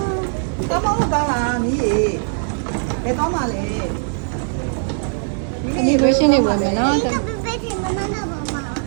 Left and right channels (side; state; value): left; silent; 62 dB below the other